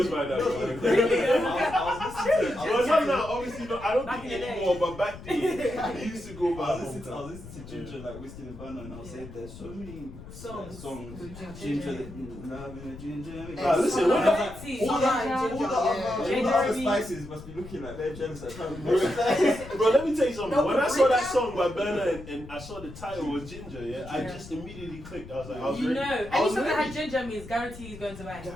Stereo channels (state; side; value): noise; left; rumble, 15 dB below the sound